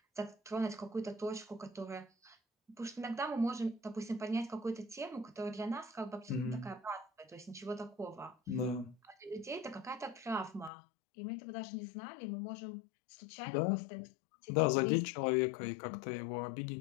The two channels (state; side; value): drops out; right; at 10.7 s